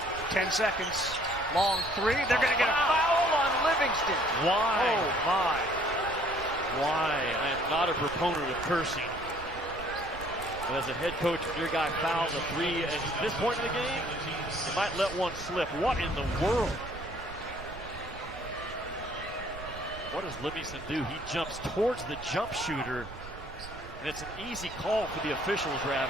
10 seconds. Long three. They're going to get a foul on Livingston. Why? Oh, my. Why? I am not a proponent of cursing. But as a head coach, when your guy fouls a 3 at this point in the game, you might let one slip. What in the world? What does Livingston do? He jumps towards the jump shooter, and it's an easy call for the officials,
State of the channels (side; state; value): right; noise; rumble, 14 dB below the sound